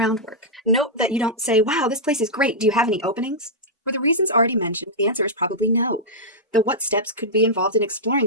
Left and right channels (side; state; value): both; normal; correlation -0.10